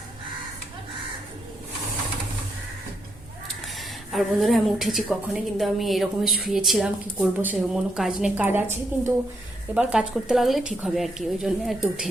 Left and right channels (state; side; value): normal; both; correlation 0.78